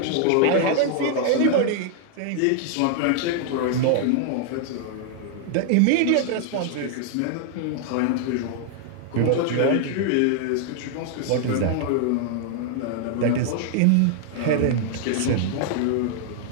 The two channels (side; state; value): both; different; correlation 0.00